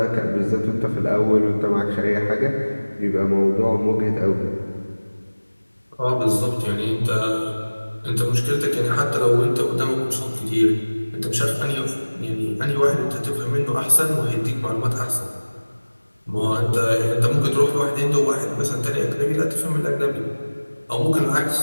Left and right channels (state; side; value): inverted; both; correlation -1.00